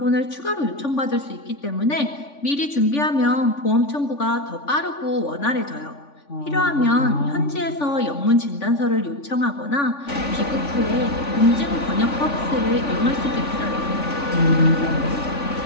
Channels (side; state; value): right; late; 3.5 ms